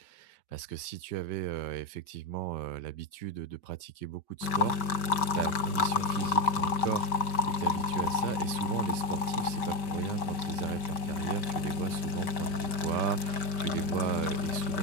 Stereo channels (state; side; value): late; right; 5.2 ms